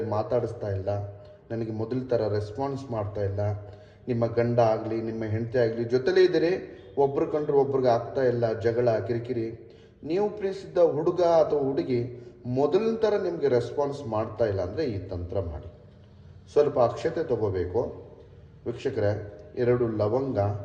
ಮಾತಾಡಿಸ್ತಾ ಇಲ್ಲ, ನನಗೆ ಮೊದಲ ಥರ ರೆಸ್ಪಾನ್ಸ್ ಮಾಡ್ತಾ ಇಲ್ಲ, ನಿಮ್ಮ ಗಂಡ ಆಗಲಿ ನಿಮ್ಮ ಹೆಂಡತಿ ಆಗಲಿ ಜೊತೆಲೇ ಇದ್ದೀರಿ, ಒಬ್ರು ಕಂಡ್ರೆ ಒಬ್ರಿಗೆ ಆಗ್ತಾ ಇಲ್ಲ, ಜಗಳ ಕಿರಿಕಿರಿ, ನೀವು ಪ್ರೀತಿಸಿದ್ದ ಹುಡುಗ ಅಥವಾ ಹುಡುಗಿ ಮೊದಲಿನ ಥರ ನಿಮಗೆ ರೆಸ್ಪಾನ್ಸ್ ಮಾಡ್ತಾ ಇಲ್ಲ ಅಂದರೆ ಈ ತಂತ್ರ ಮಾಡಿ. ಸ್ವಲ್ಪ ಅಕ್ಷತೆ ತಗೋಬೇಕು ವೀಕ್ಷಕರೇ, 2 ಲವಂಗ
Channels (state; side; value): identical; both; correlation 1.00